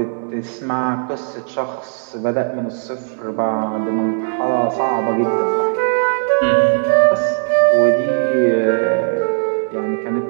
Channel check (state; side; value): silent; left; 68 dB below the other